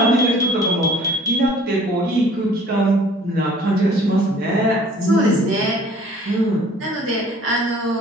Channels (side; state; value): both; normal; correlation 0.52